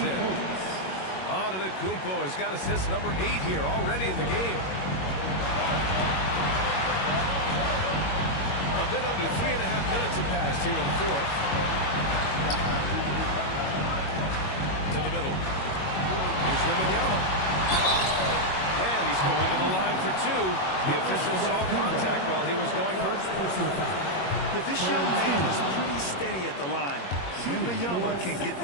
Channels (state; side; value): late; right; 21 ms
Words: in. Antetokounmpo has got assist number 8 here already in the game. A bit under 3.5 minutes have passed here in the fourth. To the middle. Here's Wembanyama. And he's going to the line for 2. The official saw contact while he was going up. If this young man is pretty steady at the line, Wembanyama can get